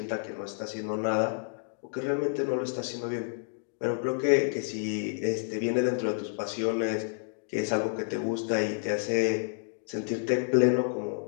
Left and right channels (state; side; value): silent; right; digital silence